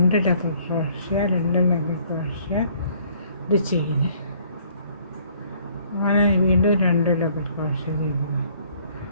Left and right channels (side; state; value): both; inverted; correlation -0.60